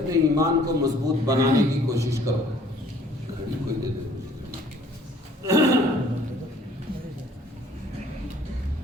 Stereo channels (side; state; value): both; normal; correlation 0.57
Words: ایمان کو مضبوط بنانے کی کوشش کرو۔ گھڑی کوئی دے دے